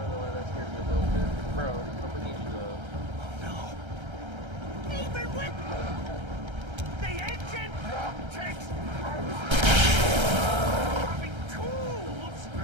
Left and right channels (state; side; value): late; left; 1.3 ms